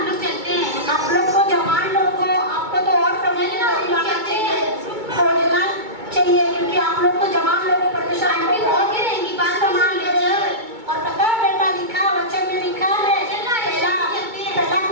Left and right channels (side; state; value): left; late; 2.2 ms